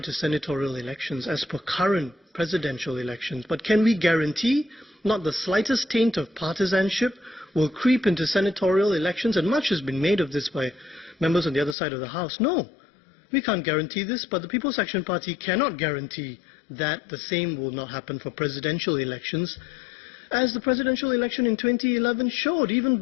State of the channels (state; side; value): drops out; right; at 11.8 s